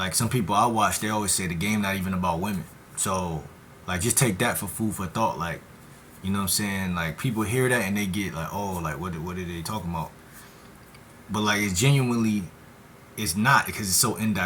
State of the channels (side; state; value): both; identical; correlation 1.00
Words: some people I watch, they always say the game not even about women. So like, just take that for food for thought. Like, you know what I'm saying? Like, people hear that and they get like, oh, like what are they talking about? But like, it's genuinely, it's not, because it's so